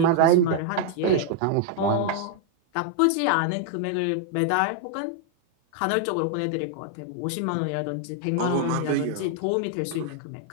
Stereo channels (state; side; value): different; both; correlation 0.00